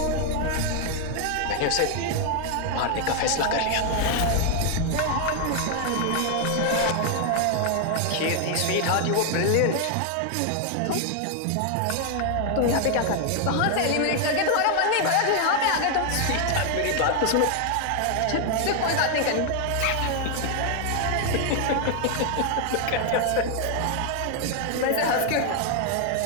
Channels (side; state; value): both; different; correlation 0.00